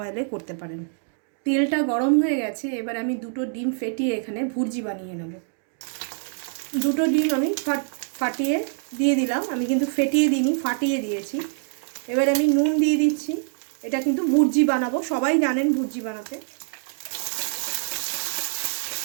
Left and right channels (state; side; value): silent; left; digital silence